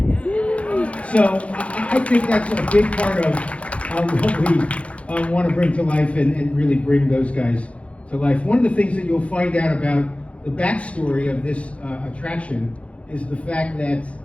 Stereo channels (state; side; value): late; right; 0.063 ms